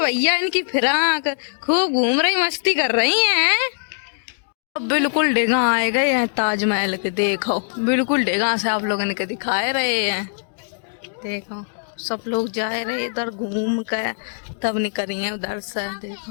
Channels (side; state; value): right; silent; digital silence